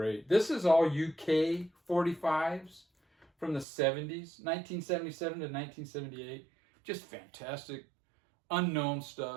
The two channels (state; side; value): drops out; left; at 3.7 s